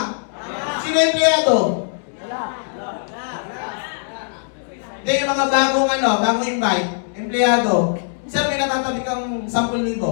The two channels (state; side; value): silent; right; 65 dB below the other